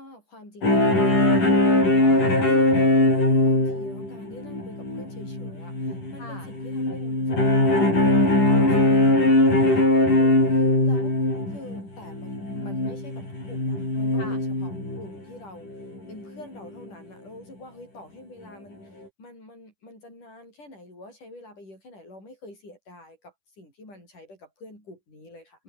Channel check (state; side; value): late; right; 10 ms